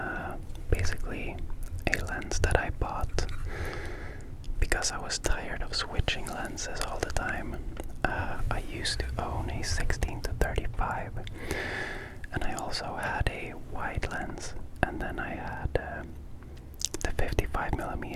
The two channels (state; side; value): identical; both; correlation 1.00